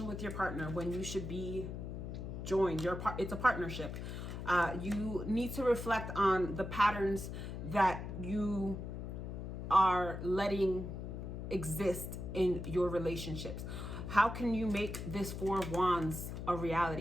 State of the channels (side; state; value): left; noise; hum, 6 dB below the sound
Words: with your partner when you should be joined. It's a partnership. You need to reflect on the patterns that you are letting exist in your relationships. How can you make this Four of Wands a